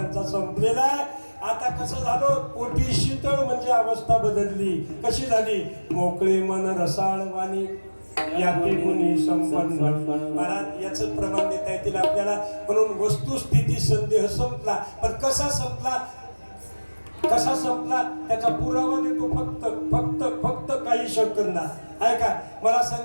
संपलेला आहे. आता कसं झालं, पोटी शीतळ म्हणजे अवस्था बदलली. कशी झाली? मोकळे मन रसाळ वाणी याते गुणी संपन्न. महाराज याच प्रमाण देता येतील आपल्याला. म्हणून वस्तुस्थिती संदेह संपला. पण कसा संपला, कसा संपला त्याचा पुरावा देतो फक्त फक्त फक्त काही सेकंदा. ऐका, मला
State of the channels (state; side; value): inverted; both; correlation -1.00